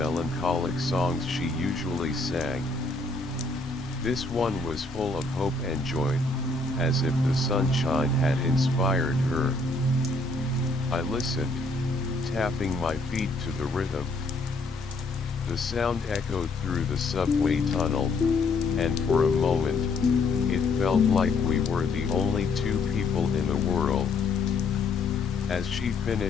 songs she usually sang. This one was full of hope and joy, as if the sunshine had inspired her. I listened, tapping my feet to the rhythm. The sound echoed through the subway tunnel, and for a moment, it felt like we were the only two people in the world. As she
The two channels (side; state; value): right; quieter; 3.4 dB